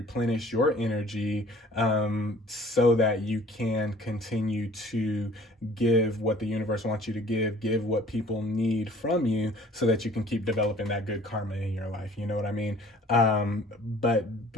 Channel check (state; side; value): normal; both; correlation 0.51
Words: your energy, so that you can continue to give what the universe wants you to give what people need from you, so that you can keep developing that good karma in your life. You know what I mean? But